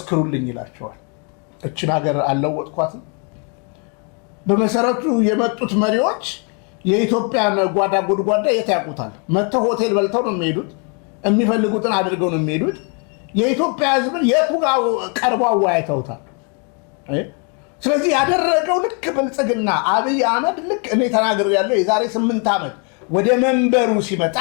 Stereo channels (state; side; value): quieter; right; 36.9 dB